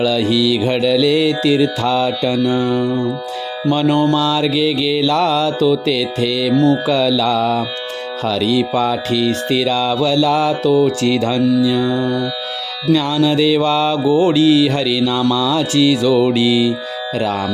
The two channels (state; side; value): identical; both; correlation 1.00